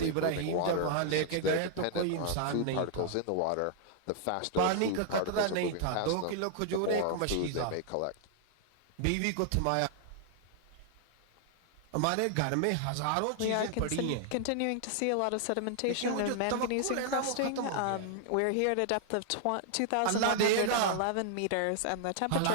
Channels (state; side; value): different; both; correlation 0.00